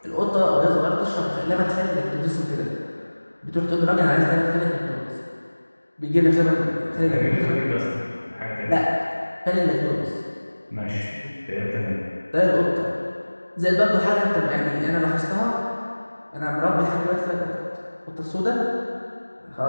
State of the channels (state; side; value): inverted; both; correlation -1.00